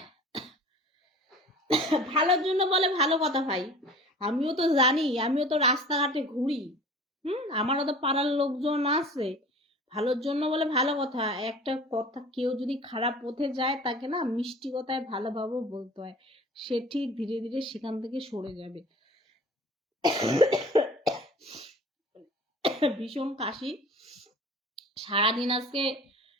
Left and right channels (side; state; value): both; normal; correlation 0.42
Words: ভালোর জন্য বলে ভালো কথা ভাই, আমিও তো জানি, আমিও তো রাস্তাঘাটে ঘুরি, আমারও তো পাড়ার লোকজন আছে। ভালোর জন্য বলে ভালো কথা, একটা কথা, কেউ যদি খারাপ পথে যায় তাকে না মিষ্টি কথায় ভালোভাবে বলতে হয়, সে ঠিক ধীরে ধীরে সেখান থেকে সরে যাবে। ভীষণ কাশি, সারাদিন আজকে